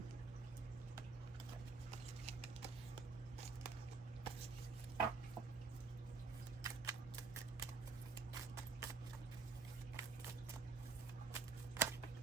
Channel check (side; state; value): left; quieter; 4.5 dB